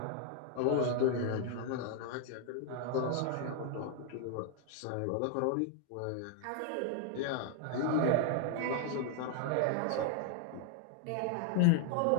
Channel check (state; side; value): different; both; correlation 0.00